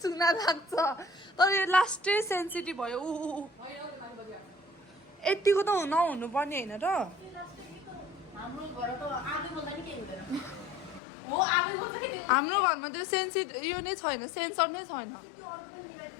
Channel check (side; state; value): right; drops out; at 11.0 s